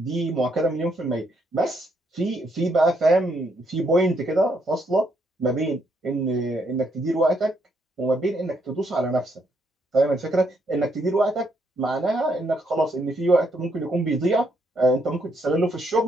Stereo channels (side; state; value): both; normal; correlation 0.74